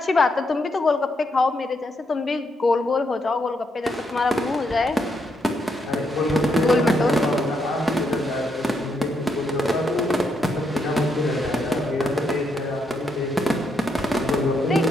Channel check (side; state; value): both; normal; correlation 0.78